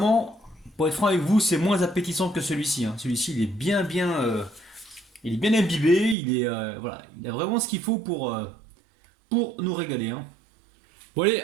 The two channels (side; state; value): left; drops out; at 6.2 s